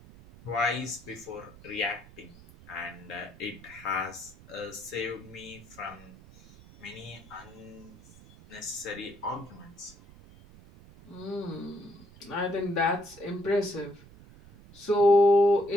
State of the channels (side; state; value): right; noise; rumble, 21 dB below the sound